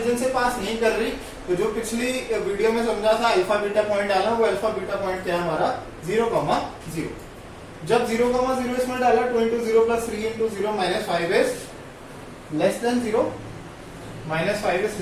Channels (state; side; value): identical; both; correlation 1.00